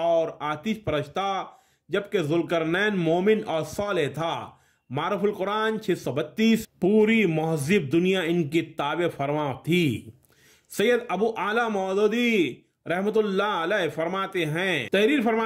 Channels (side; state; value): both; identical; correlation 1.00